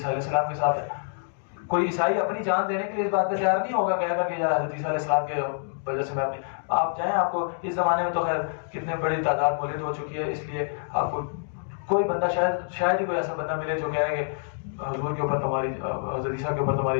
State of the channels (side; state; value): right; silent; digital silence